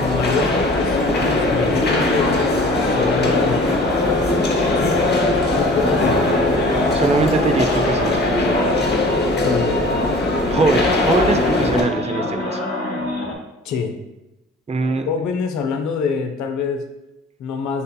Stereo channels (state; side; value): normal; both; correlation 0.46